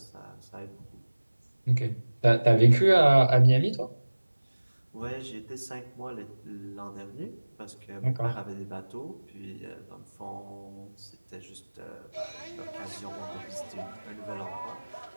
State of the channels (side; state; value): both; inverted; correlation -1.00